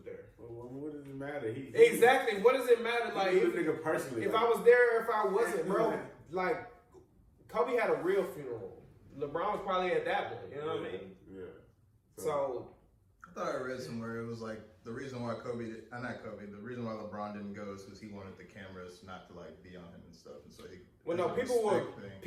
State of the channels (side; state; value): both; identical; correlation 1.00